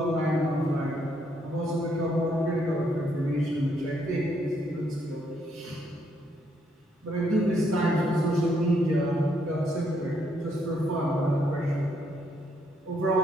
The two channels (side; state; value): both; normal; correlation 0.73